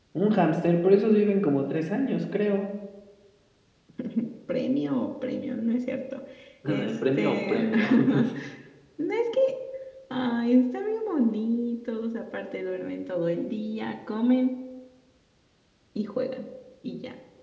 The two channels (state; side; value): identical; both; correlation 1.00